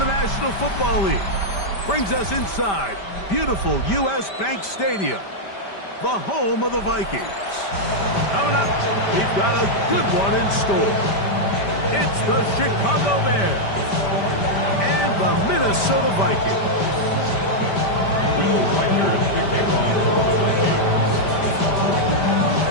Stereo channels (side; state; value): right; late; 5.1 ms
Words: National Football League brings us inside beautiful U.S. Bank Stadium, the home of the Vikings. Coming up, we've got a good one in store. It's the Chicago Bears and the Minnesota Vikings. Will Reichert kicking off for the Vikings.